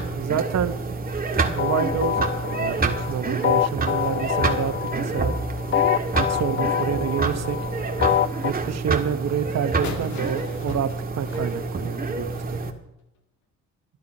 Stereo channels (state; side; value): normal; both; correlation 0.10